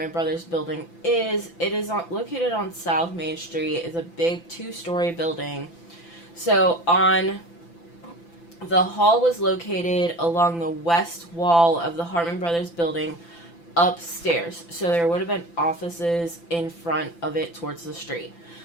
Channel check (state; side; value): late; right; 5.9 ms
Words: Brothers building is, it is located on South Main Street. It's a big 2-story building. So the hall was located along the west wall of the Hartman Brothers building upstairs. So there would have been offices in front of it towards the street.